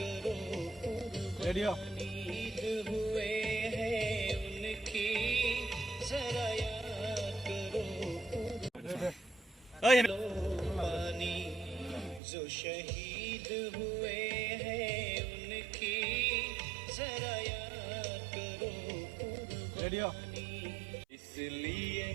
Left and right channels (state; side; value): drops out; left; at 12.2 s